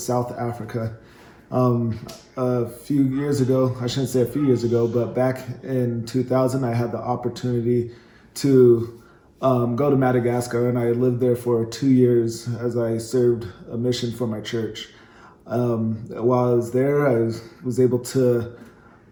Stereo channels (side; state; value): both; identical; correlation 1.00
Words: Africa. A few years ago, I shouldn't say a few years ago, but back in 2000, I had the opportunity to go to Madagascar, and I lived there for 2 years as I served a mission for my church. While I was there, I was able to